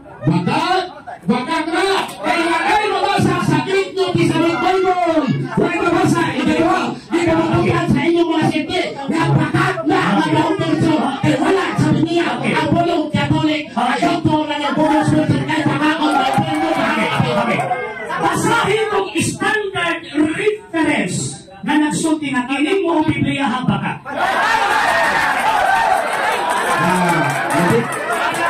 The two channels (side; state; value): both; identical; correlation 1.00